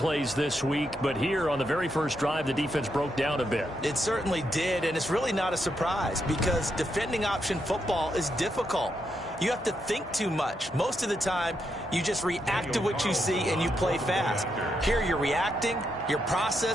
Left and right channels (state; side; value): normal; both; correlation 0.81